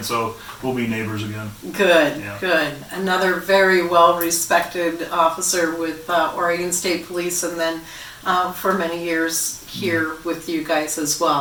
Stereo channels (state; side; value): identical; both; correlation 1.00